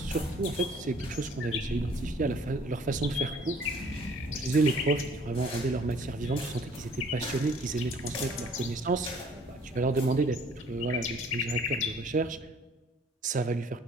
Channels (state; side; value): normal; both; correlation 0.56